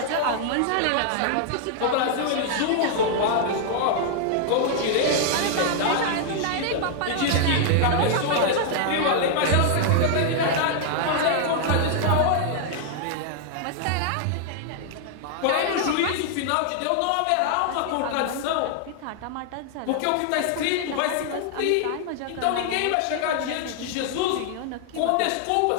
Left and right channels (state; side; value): different; both; correlation 0.00